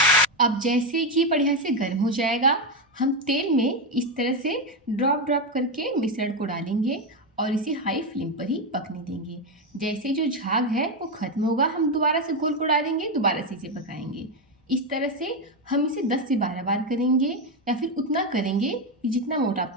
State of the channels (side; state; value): both; normal; correlation 0.09